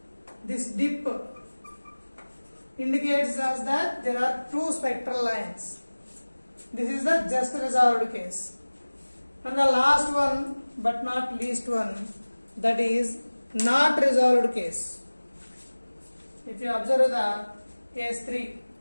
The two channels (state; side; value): inverted; both; correlation -1.00